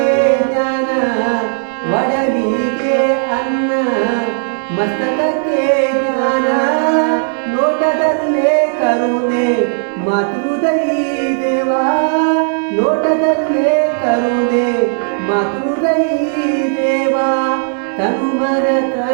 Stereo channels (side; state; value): left; silent; 65 dB below the other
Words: ಜ್ಞಾನ ಒಡಲಿಗೆ ಅನ್ನ ಮಸ್ತಕಕ್ಕೆ ಜ್ಞಾನ ನೋಟದಲ್ಲೇ ಕರುಣೆ ಮಾತೃದೈ ದೇವಾ ನೋಟದಲ್ಲೇ ಕರುಣೆ ಮಾತೃದೈ ದೇವಾ ತನುಮನ